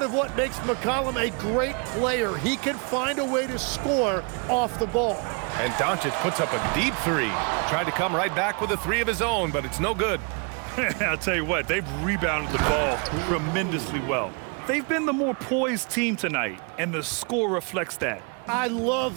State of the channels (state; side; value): quieter; left; 35.6 dB